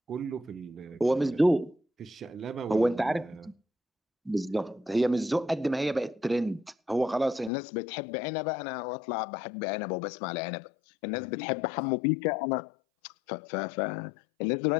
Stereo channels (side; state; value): right; drops out; at 7.5 s